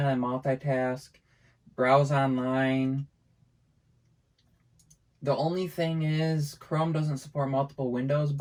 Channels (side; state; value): both; identical; correlation 1.00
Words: of multitask, browse online. The only thing is Chrome doesn't support multiple windows,